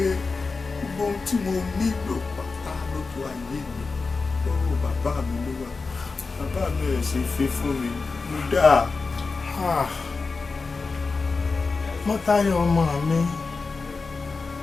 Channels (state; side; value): quieter; right; 4.2 dB